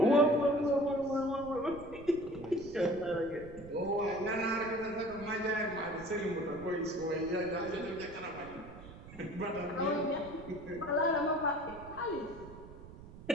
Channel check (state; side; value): noise; right; rumble, 16 dB below the sound